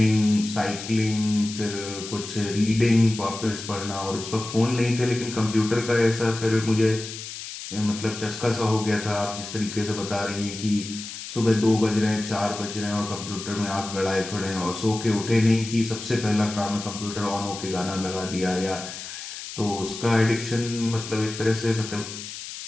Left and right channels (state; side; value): noise; left; hiss, 10 dB below the sound